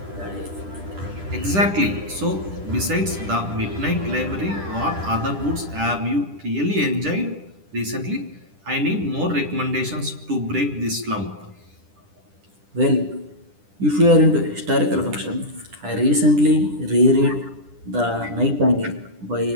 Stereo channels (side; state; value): left; late; 10 ms